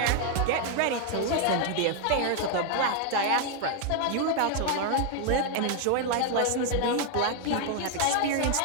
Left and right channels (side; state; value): both; different; correlation 0.01